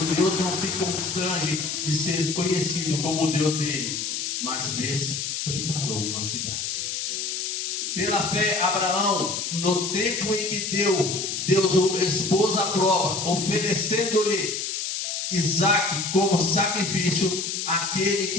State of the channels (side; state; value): left; noise; hiss, 3 dB below the sound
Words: Deus não se constrange de ser conhecido como o Deus dele, mas lhes preparou uma cidade. Pela fé, Abraão, no tempo em que Deus o expôs à prova, oferecendo-lhe Isaque como sacrifício, aquele